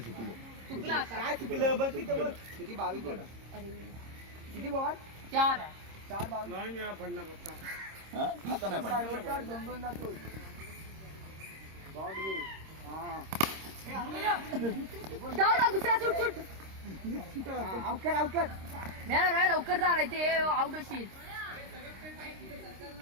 सुकलं. काय चुकलं बघ तिथं बघ किती 22 बॉल. किती बॉल 4 22 नाही पडणार आता नाही पडणार. दोन दोन जातो बॉल घे. जाऊ दुसरा शूट आउट कर नाही लवकर जा ते आउट होशील.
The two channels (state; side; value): late; left; 26 ms